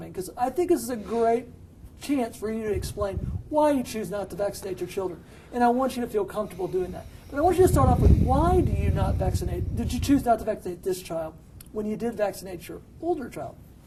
because I think this is a great chance for you to explain why you choose not to vaccinate your children. And I want you to feel comfortable doing that. But I want you to start off with, why do you not vaccinate? Did you choose not to vaccinate this child when you did vaccinate your older child?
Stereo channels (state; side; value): identical; both; correlation 1.00